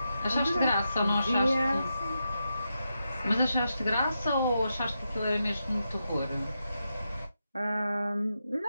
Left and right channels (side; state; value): both; inverted; correlation -0.86